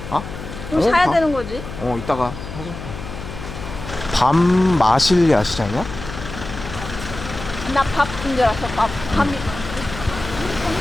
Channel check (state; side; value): noise; left; hum, 10 dB below the sound